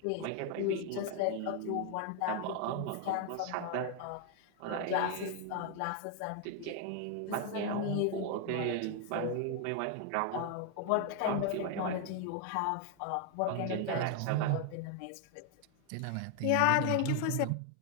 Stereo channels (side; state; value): both; different; correlation 0.00